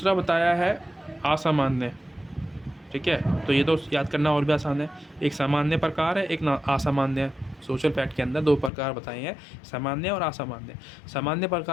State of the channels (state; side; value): drops out; right; at 8.7 s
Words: बताया है असामान्य, ठीक है। तो ये तो याद करना और भी आसान है। एक सामान्य प्रकार है, एक असामान्य। सोशल फैक्ट के अंदर 2 प्रकार बताए हैं, सामान्य और असामान्य। सामान्य